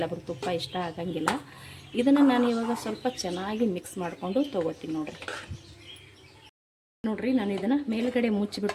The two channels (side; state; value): both; identical; correlation 1.00